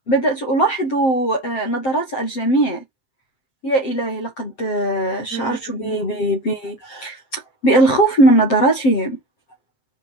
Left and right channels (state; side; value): late; right; 7.6 ms